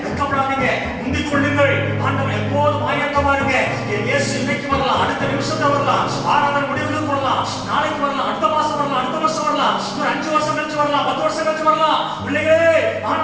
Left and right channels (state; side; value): identical; both; correlation 1.00